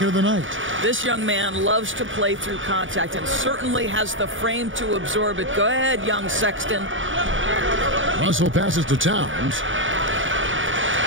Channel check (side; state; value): left; late; 0.57 ms